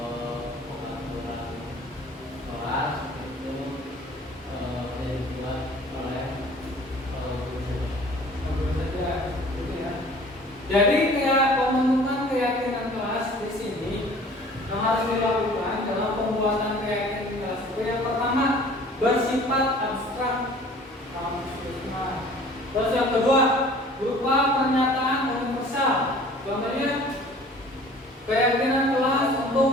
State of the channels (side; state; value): both; normal; correlation 0.49